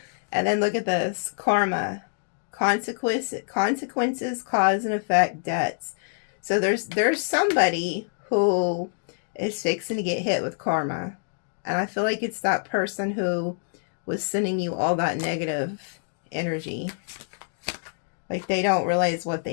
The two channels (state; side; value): silent; right; digital silence